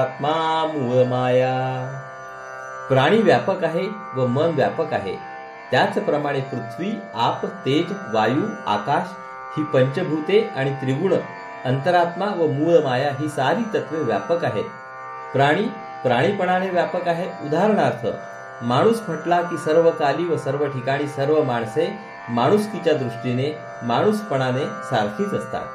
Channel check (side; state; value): both; identical; correlation 1.00